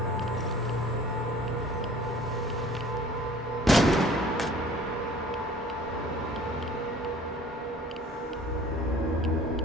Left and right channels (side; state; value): both; normal; correlation 0.50